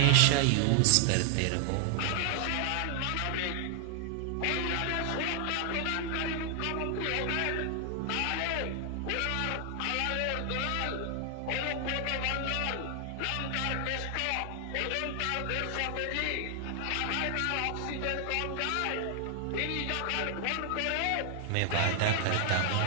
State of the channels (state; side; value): different; both; correlation 0.00